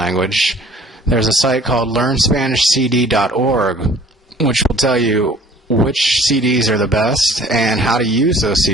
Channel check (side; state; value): both; normal; correlation 0.52